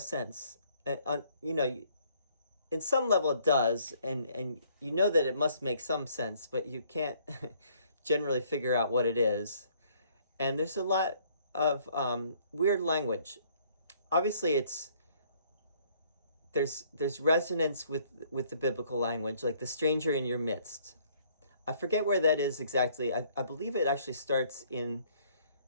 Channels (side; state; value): both; inverted; correlation -0.63